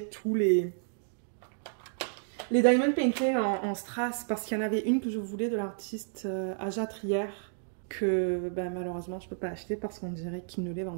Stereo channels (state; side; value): silent; left; digital silence